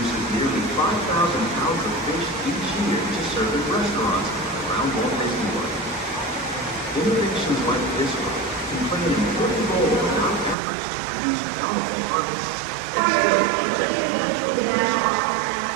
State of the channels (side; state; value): left; drops out; at 10.6 s